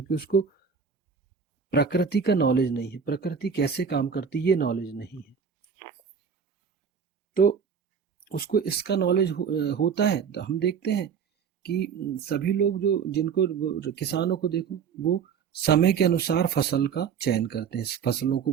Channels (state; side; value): quieter; left; 6.7 dB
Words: उसको प्रकृति का नॉलेज नहीं है, प्रकृति कैसे काम करती है ये नॉलेज नहीं है। तो उसको इसका नॉलेज होता है। तो हम देखते हैं कि सभी लोग जो, जिनको किसानों को देखो, वो समय के अनुसार फसल का चयन करते हैं, फसलों को